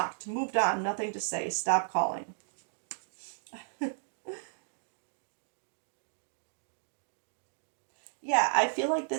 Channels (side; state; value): left; silent; digital silence